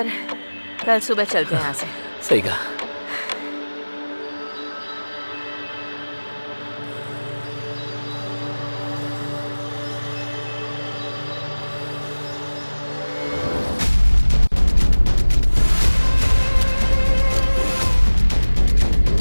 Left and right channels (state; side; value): inverted; both; correlation -1.00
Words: कल सुबह चलते हैं यहाँ से। सही कहा।